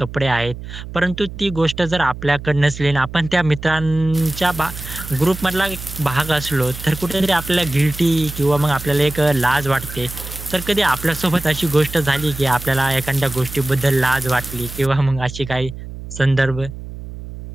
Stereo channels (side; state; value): right; noise; hum, 11 dB below the sound